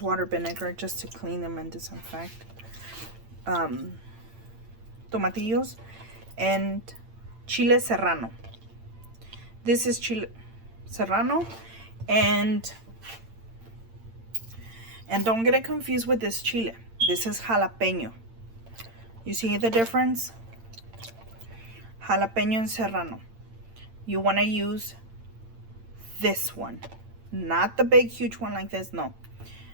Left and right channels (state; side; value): late; left; 8.9 ms